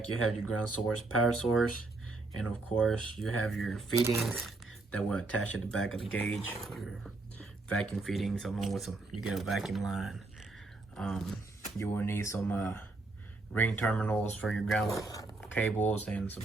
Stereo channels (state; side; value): quieter; left; 3.3 dB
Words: you have your ground source, power source, and of course, you have your fittings that will attach at the back of the gauge. Your vacuum fittings, along with you get a vacuum line. You will need some ring terminals for your ground cables and some